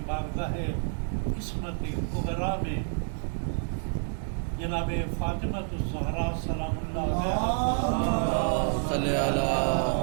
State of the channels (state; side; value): silent; left; digital silence